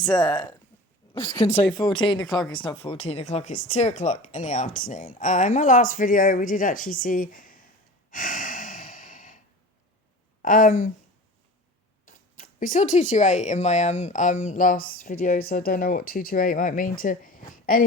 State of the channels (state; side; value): normal; both; correlation 0.37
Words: I was going to say 14 o'clock. It's not 14 o'clock, it's 2 o'clock in the afternoon. In my last video, we did actually see, we saw 228 in my last video, so I don't know what 228 might mean to